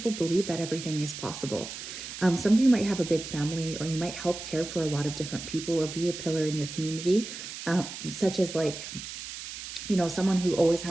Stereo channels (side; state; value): right; noise; hiss, 10 dB below the sound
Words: believe that everything is possible. Some of you might have a big family, or you might help care for a lot of different people or be a pillar in your community, such as like, you know, someone who always